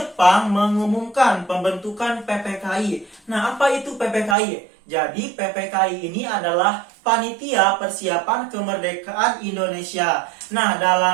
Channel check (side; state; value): left; drops out; at 4.4 s